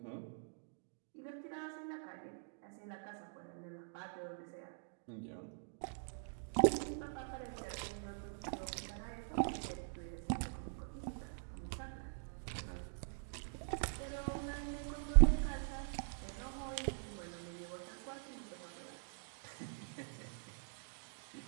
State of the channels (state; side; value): silent; left; digital silence